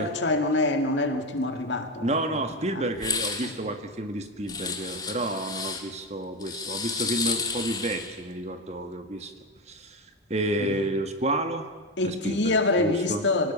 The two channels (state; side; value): normal; both; correlation 0.14